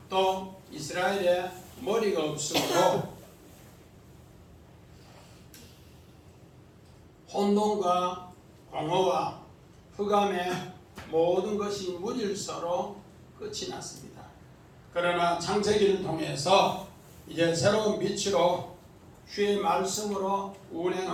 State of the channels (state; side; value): identical; both; correlation 1.00